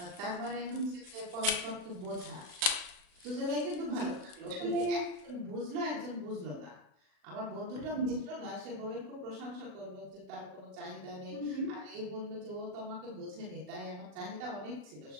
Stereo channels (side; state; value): left; late; 40 ms